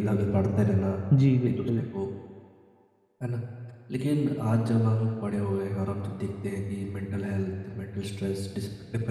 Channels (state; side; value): identical; both; correlation 1.00